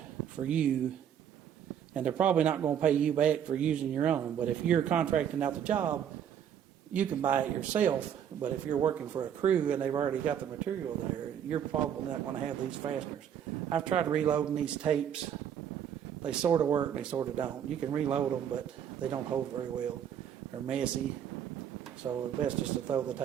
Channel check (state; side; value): quieter; left; 9.1 dB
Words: for you, and they're probably not going to pay you back for using your own. But if you're contracting out the job, you can buy it yourself. But if you're working for a crew and they've already got the material there, you're probably not going to have these fasteners. I've tried reloading these tapes. They sort of work, they sort of don't. You can reload them, but they don't hold very well. They're messy, so it's best just to throw the